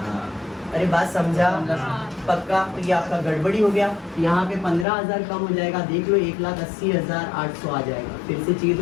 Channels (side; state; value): right; drops out; at 4.9 s